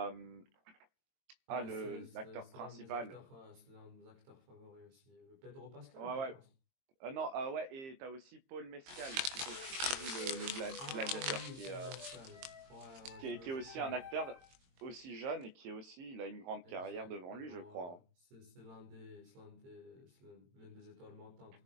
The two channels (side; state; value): left; late; 22 ms